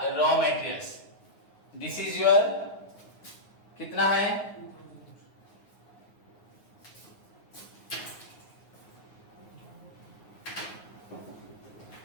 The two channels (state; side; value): late; right; 9.5 ms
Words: raw materials. This is your कितना है,